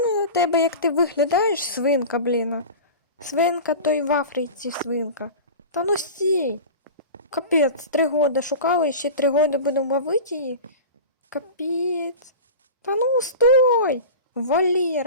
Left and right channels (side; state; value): both; inverted; correlation -0.32